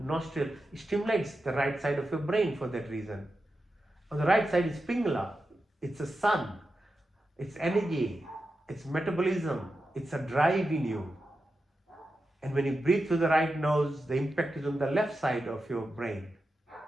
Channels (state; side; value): normal; both; correlation 0.90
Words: stimulates the right side of your brain for that reason. On the right side is Pingala. It's a sun. It's energy. It's metabolism. It's a drive in you. And when you breathe through the right nose, the impact is on the left side of your brain,